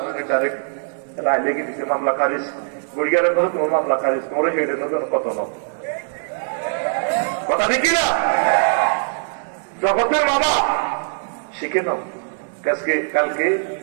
আমি ডাইরেক্ট রায় লেগে দিছে মামলা খারিজ গুড়িয়ারের কথা তোমার মামলা খারিজ তোমার হেডে নতুন কত ন কথা দেখি না জগতের বাবা শিখে নাও কালকে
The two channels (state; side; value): silent; left; digital silence